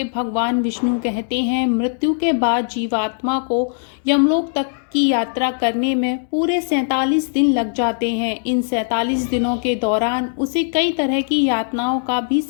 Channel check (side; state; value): right; silent; digital silence